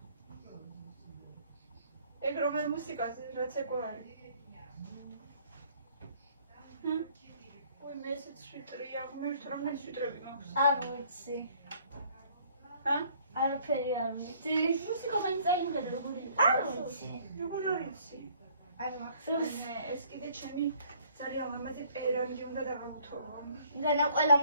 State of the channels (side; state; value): both; inverted; correlation -0.60